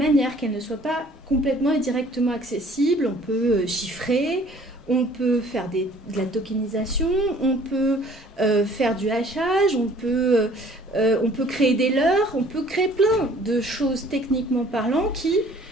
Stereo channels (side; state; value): both; normal; correlation 0.54